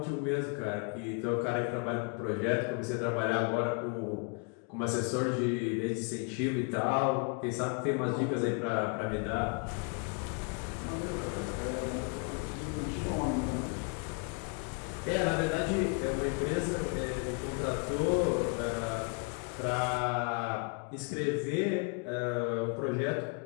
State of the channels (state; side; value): quieter; right; 36.1 dB